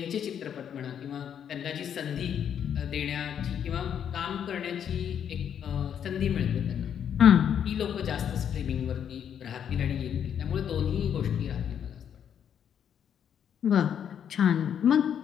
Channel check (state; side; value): quieter; right; 8.7 dB